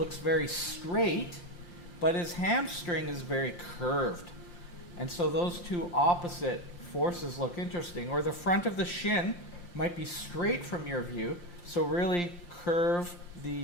very straight, but his hamstring is very curved. And so those two opposite forces look interesting. Or the front of the shin might be straight from your view, so really curve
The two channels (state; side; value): late; right; 5.7 ms